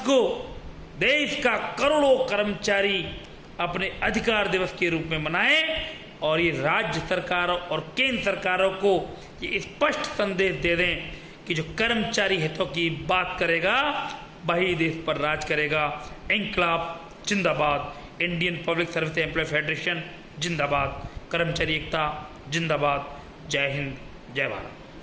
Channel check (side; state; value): both; identical; correlation 1.00